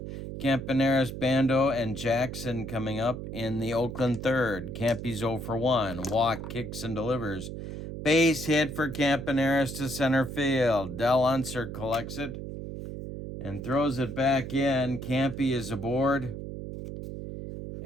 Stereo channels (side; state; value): right; noise; hum, 8 dB below the sound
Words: Campaneris, Bando, and Jackson coming up in the Oakland third. Campy's 0 for 1. Walk kicks and delivers. Base hit for Campaneris to center field. Del Unser collects it and throws it back in. Campy is aboard.